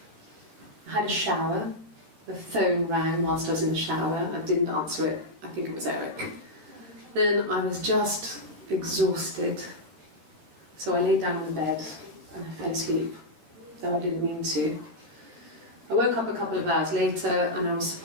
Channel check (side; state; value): left; late; 13 ms